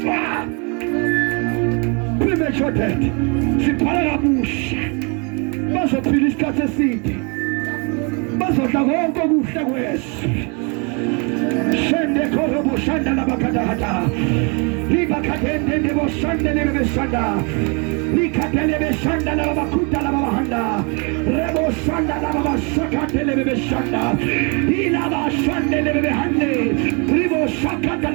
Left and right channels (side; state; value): left; quieter; 33.4 dB